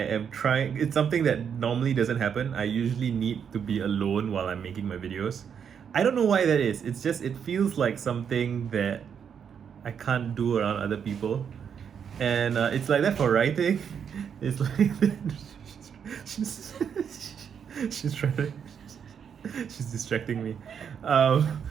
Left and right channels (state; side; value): quieter; left; 7.5 dB